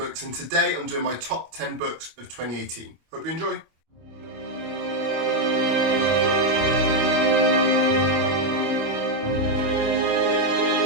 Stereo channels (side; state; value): left; late; 25 ms